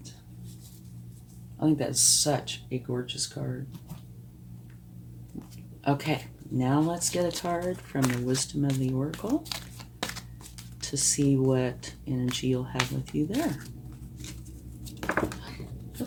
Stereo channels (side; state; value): both; identical; correlation 1.00